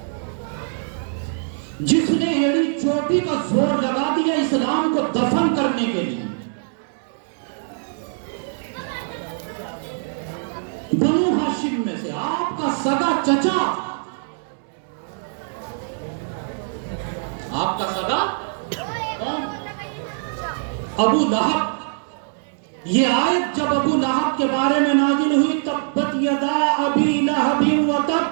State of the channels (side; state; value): left; silent; digital silence